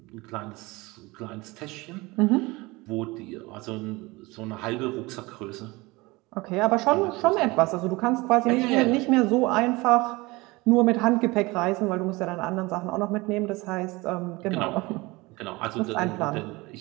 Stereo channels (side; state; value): left; quieter; 22.8 dB